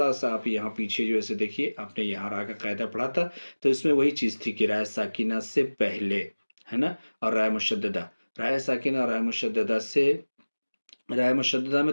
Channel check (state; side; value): inverted; both; correlation -1.00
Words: سا آپ یہاں پیچھے جو ایسے دیکھیے، آپ نے یہاں را کا قاعدہ پڑھا تھا، تو اس میں وہی چیز تھی کہ رائے ساکنہ سے پہلے ہے نا، اور رائے مشددہ، رائے ساکنہ اور رائے مشددہ میں